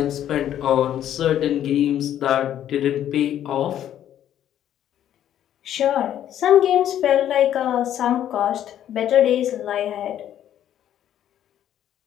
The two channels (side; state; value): right; quieter; 10.9 dB